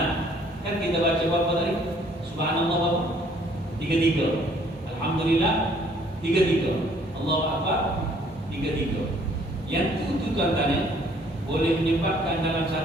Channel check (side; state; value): both; normal; correlation 0.61